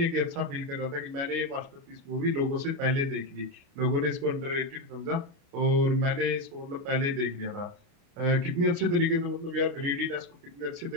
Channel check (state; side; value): late; left; 29 ms